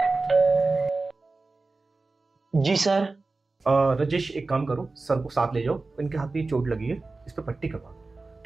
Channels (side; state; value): left; quieter; 3.6 dB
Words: जी सर। राजेश, एक काम करो, सर को साथ ले जाओ, इनके हाथ में चोट लगी है, इस पे पट्टी करवा दो,